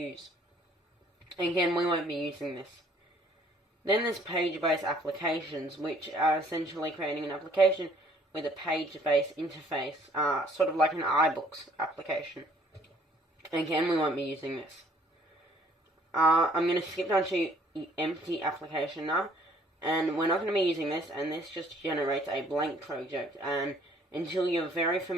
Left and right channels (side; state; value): both; normal; correlation 0.60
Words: Again, we won't be using this. Then there's page-based applications, which are essentially creating an application with a page-based interface, sort of like an iBooks application. Again, we won't be using this. I'm going to skip down to empty application now, and we're not going to be using this, and this just generates a blank project, and until you're very